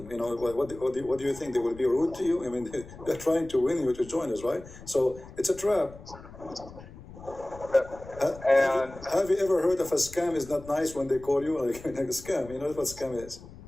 What do you think, they will be rude to you? I mean, they're trying to win you to join us, right? So it's a trap. And have you ever heard of a scam is not nice when they call you like a scam? You know what scam is?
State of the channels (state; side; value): noise; left; rumble, 17 dB below the sound